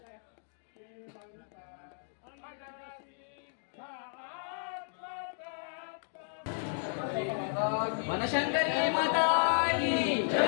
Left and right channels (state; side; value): silent; right; digital silence